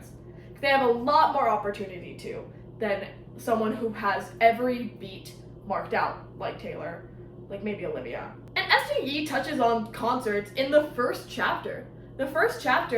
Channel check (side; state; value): both; identical; correlation 1.00